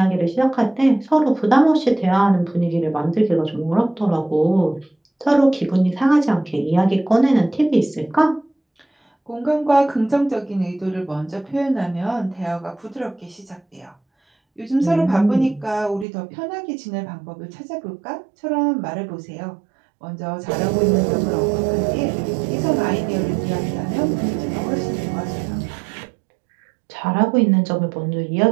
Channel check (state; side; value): drops out; left; at 16.1 s